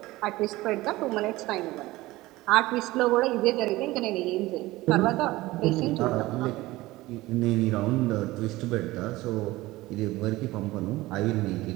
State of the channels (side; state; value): left; quieter; 18.8 dB